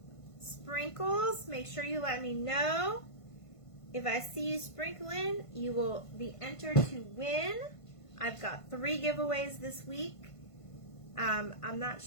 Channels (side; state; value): right; late; 1.5 ms